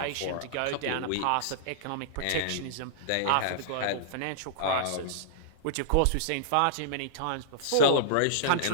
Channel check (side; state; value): both; different; correlation -0.02